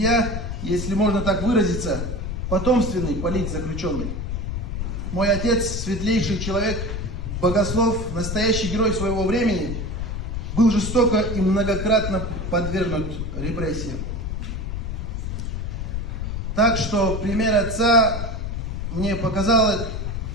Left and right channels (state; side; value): noise; left; rumble, 4 dB below the sound